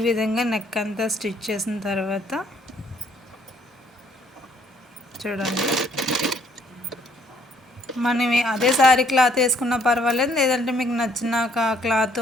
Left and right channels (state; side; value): normal; both; correlation 0.65